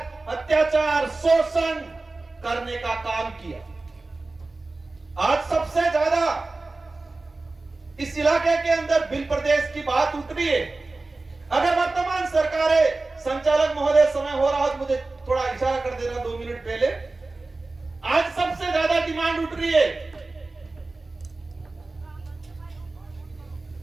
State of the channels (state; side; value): quieter; left; 3.3 dB